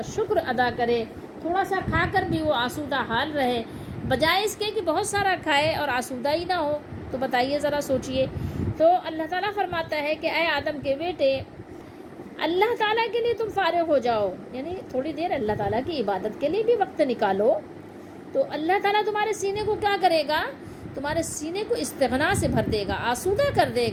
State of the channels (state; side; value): identical; both; correlation 1.00